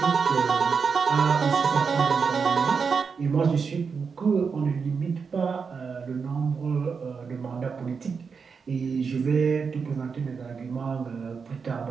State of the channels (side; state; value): left; quieter; 5.6 dB